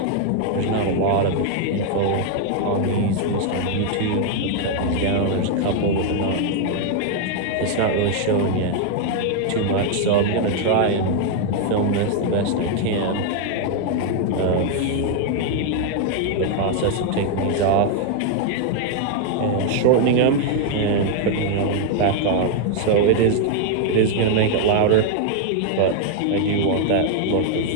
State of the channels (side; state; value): both; different; correlation 0.00